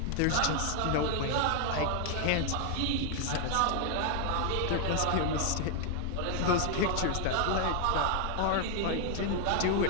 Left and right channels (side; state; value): both; different; correlation 0.00